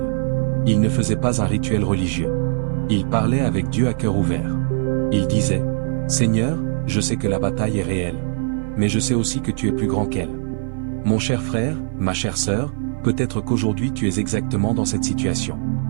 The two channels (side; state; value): left; silent; 56 dB below the other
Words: Il ne faisait pas un rituel religieux. Il parlait avec Dieu à cœur ouvert. Il disait, « Seigneur, je sais que la bataille est réelle, mais je sais aussi que tu es plus grand qu'elle. » Mon cher frère, ma chère sœur, peut-être qu'aujourd'hui tu es exactement dans cette situation.